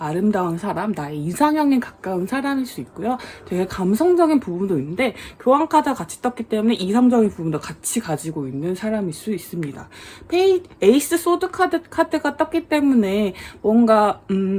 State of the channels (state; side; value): identical; both; correlation 1.00